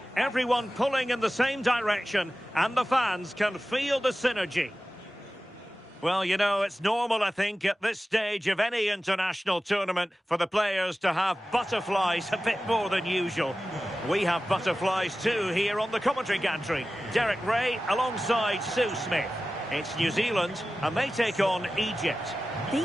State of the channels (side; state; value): both; normal; correlation 0.95